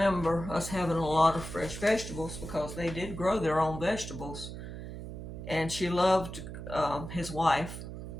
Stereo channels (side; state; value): right; noise; hum, 9 dB below the sound